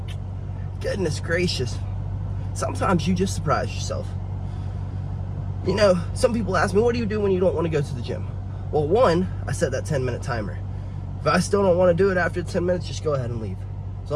Goodness gracious. Sometimes you just surprise yourself. You know, some people ask me, what do you do when you don't want to go to the gym? Well, one, I set that 10-minute timer. If I still don't want to do it after 10 minutes, just go ahead and leave. As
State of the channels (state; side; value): identical; both; correlation 1.00